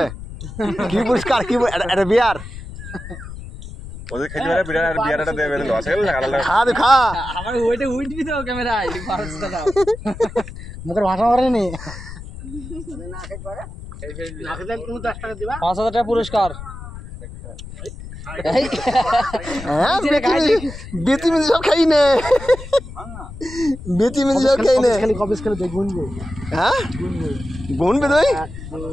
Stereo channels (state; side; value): noise; left; rumble, 12 dB below the sound